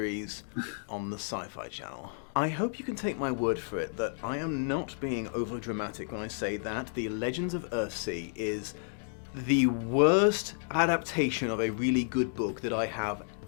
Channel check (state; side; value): silent; right; digital silence